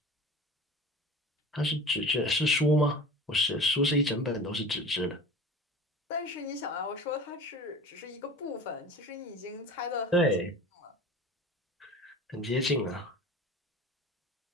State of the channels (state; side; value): normal; both; correlation 0.36